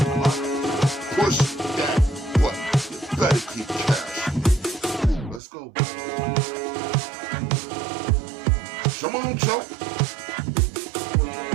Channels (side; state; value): left; drops out; at 5.4 s